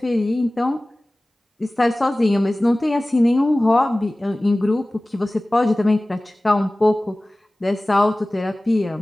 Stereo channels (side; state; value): both; normal; correlation 0.98